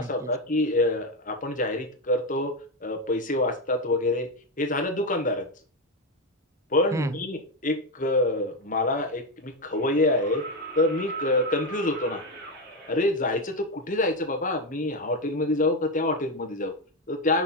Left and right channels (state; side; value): normal; both; correlation 0.10